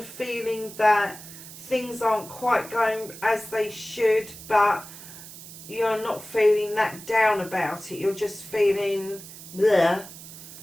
feeling that things aren't quite going as they should, but you're not feeling that down about it, you're just feeling bleh,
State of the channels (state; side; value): noise; right; hiss, 15 dB below the sound